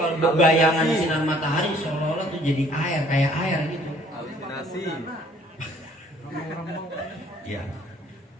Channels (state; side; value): normal; both; correlation 0.58